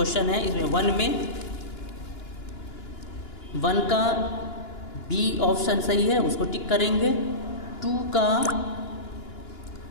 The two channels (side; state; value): right; late; 2.9 ms